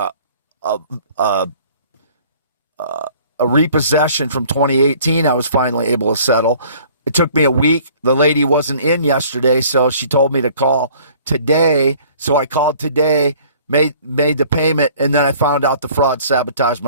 repossession from 2018. I was finally able to settle. It took me a week. The lady wasn't in yesterday, so she told me to call today. So I called today, made the payment, and then I found out the fraud sabotaged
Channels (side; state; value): both; inverted; correlation -0.53